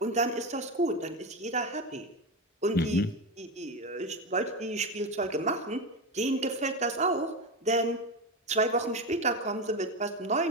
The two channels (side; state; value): both; normal; correlation 0.16